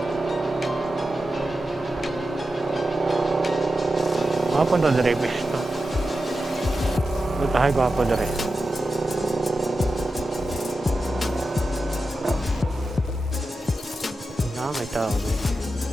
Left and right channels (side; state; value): both; normal; correlation 0.91